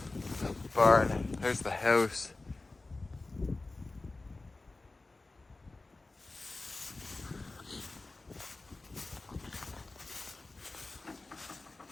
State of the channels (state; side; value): quieter; right; 3.3 dB